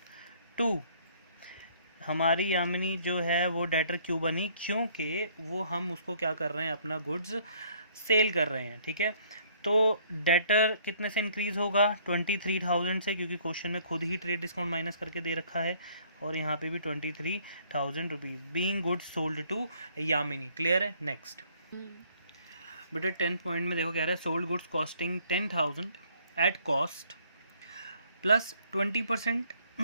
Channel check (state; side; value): inverted; both; correlation -0.62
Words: टू, हमारी यामिनी जो है वो डेटर क्यों बनी, क्योंकि वो हम उसको क्या कर रहे हैं, अपना गुड्स सेल कर रहे हैं, ठीक है। तो डेटर कितने से इंक्रीज होगा, 23,000 से, क्योंकि क्वेश्चन में खुद ही ट्रेड डिस्काउंट माइनस करके दे रखा है, और यहाँ पे भी 23,000 rupees, being goods sold to Yamini. Clear है। नेक्स्ट बेटा 10th पॉइंट में देखो क्या रहा है, sold goods costing 10,000 at cost plus 20%